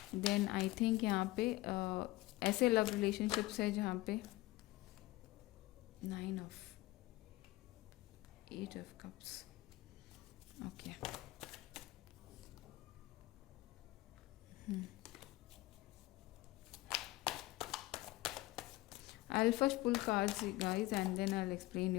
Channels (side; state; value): right; quieter; 18.9 dB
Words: देन आई थिंक यहाँ पे ऐसे लव रिलेशनशिप्स है जहाँ पे 9 of 8 of cups। Okay, I'll first pull cards, guys, and then I'll explain